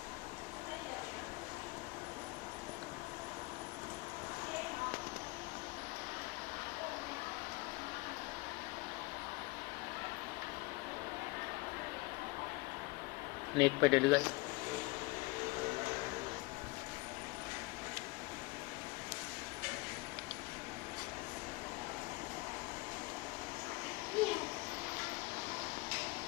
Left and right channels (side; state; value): right; quieter; 24.0 dB